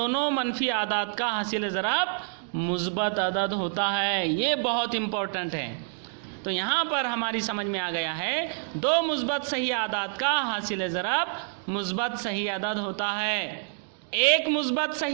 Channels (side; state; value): left; silent; 60 dB below the other